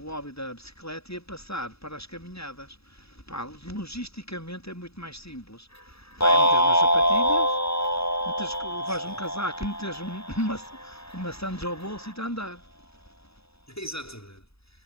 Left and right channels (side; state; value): right; late; 0.78 ms